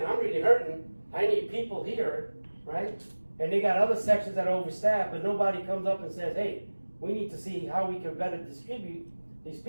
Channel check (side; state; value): both; inverted; correlation -1.00